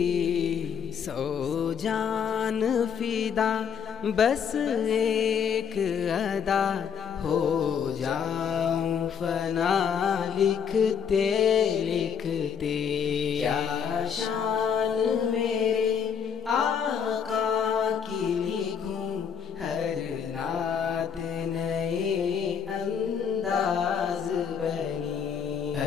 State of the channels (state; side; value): quieter; right; 7.5 dB